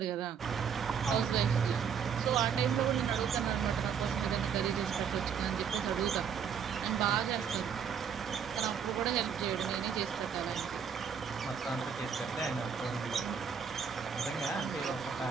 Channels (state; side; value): quieter; left; 7.2 dB